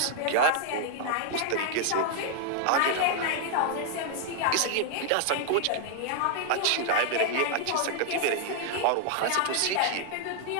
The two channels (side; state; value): both; different; correlation 0.00